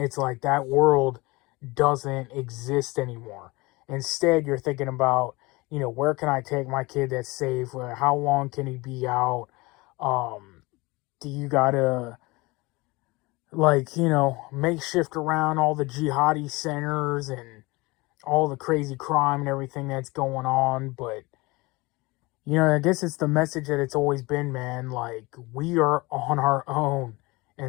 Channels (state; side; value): quieter; right; 23.6 dB